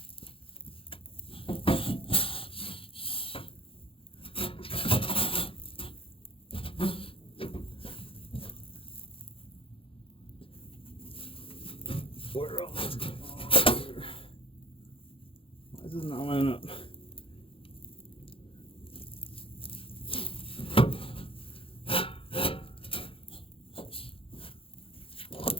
Where else? Why is it not lining up?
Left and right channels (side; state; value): right; late; 0.26 ms